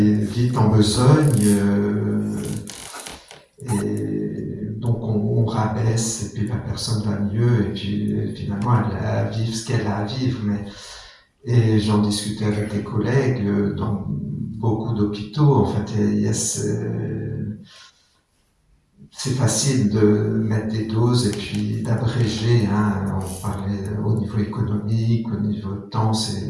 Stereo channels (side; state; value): both; identical; correlation 1.00